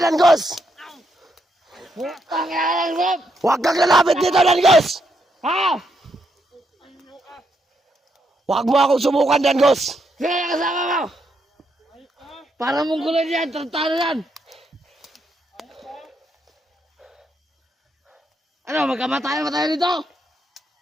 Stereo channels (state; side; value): normal; both; correlation 0.78